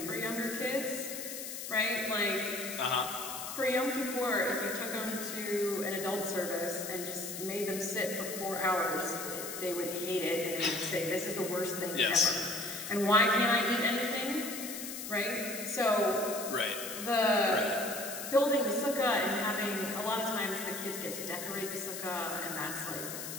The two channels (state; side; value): noise; left; hiss, 7 dB below the sound